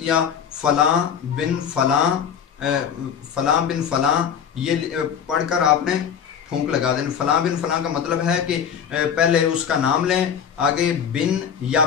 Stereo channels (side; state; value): right; quieter; 7.9 dB